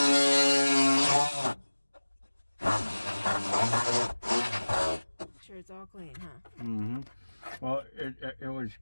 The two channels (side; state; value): both; inverted; correlation -1.00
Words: Sure it's all clean, huh? Mm-hmm. Well, it was